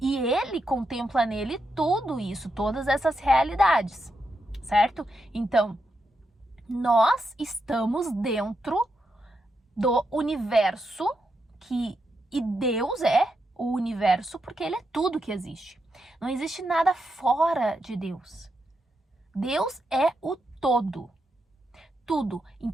ele contempla nele tudo isso, todas essas realidades, certo? Então, nós estamos dentro do universo e Deus é o universo porque ele é tudo que existe. Não existe nada fora de Deus. Deus é o todo. Tudo.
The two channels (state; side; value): normal; both; correlation 0.84